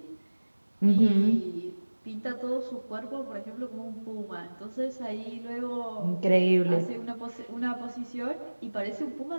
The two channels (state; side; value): inverted; both; correlation -1.00